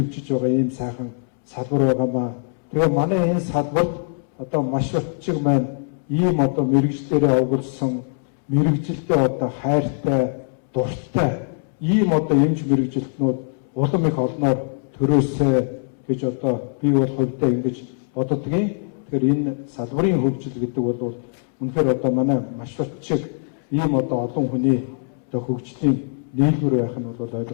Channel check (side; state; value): right; silent; 64 dB below the other